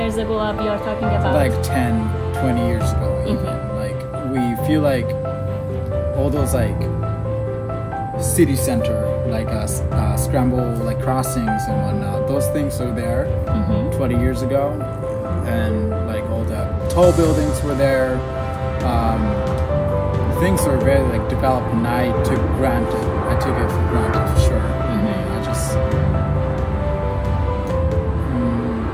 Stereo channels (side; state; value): both; identical; correlation 1.00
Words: ago you're talking about? Like 10, 20 years ago even. Like we feel like all those like city center, like scramble like crossings and whatnot, those things are there 20 years ago, and like all the tall buildings were there. Things were very like developed, and I took it for granted for sure. I just